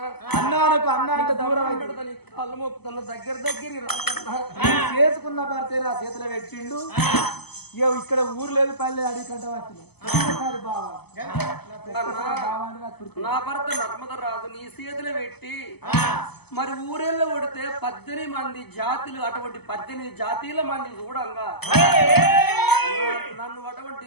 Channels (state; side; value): late; right; 0.98 ms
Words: అన్నానికి అన్నానికి దూరం కళ్ళు మొక్కుతున్న దగ్గర చేసుకున్న భర్తే నా చేతిలో పెట్టిండు ఇక్కడ ఊరు లేదు పల్లె అడవి కంటే వచ్చిన ఒక్కసారి బాగా నా భర్త నర్మద రాజు నీ చేతులు పెట్టి మరి ఊరేళ్ళు కొడితే 18 మంది జాతులు అటువంటి 18 జాతీయుల మంది చూడంగా నన్ను అటువంటి